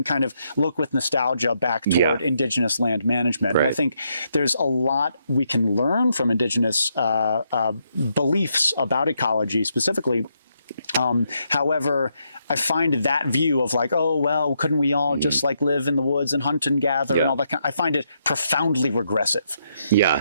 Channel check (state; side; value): inverted; both; correlation -0.78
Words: kind of look with nostalgia back toward indigenous land management. And I think there's a lot we can learn from indigenous beliefs about ecology specifically. However, I find that view of like, oh, well, couldn't we all just like live in the woods and hunt and gather and all that kind, I find it profoundly regressive.